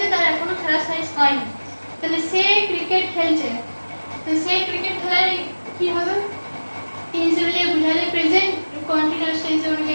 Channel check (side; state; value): both; inverted; correlation -1.00